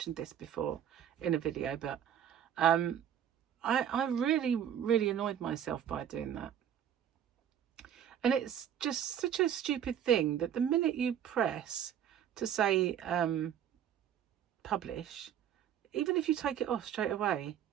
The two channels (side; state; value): left; quieter; 9.5 dB